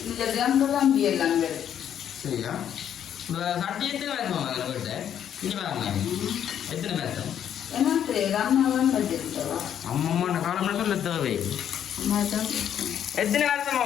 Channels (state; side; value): quieter; right; 9.5 dB